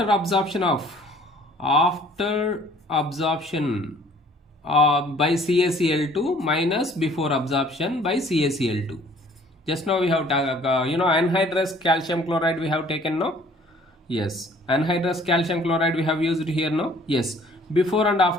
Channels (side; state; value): both; normal; correlation 0.56